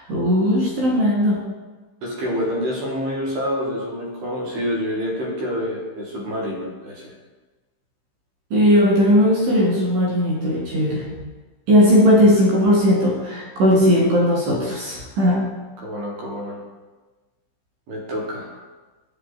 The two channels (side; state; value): left; late; 15 ms